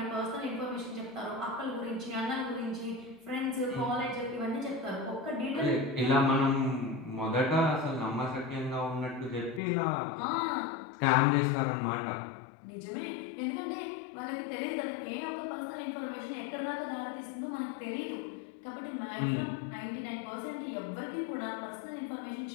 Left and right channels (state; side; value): drops out; right; at 9.6 s